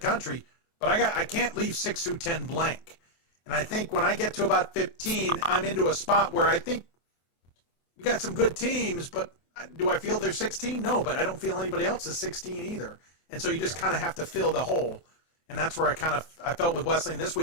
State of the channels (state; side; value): late; right; 24 ms